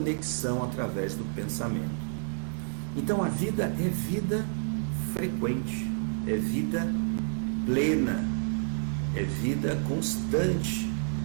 através do pensamento. Então a vida é vida frequente, é vida plena, é vida constante.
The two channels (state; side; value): silent; left; 58 dB below the other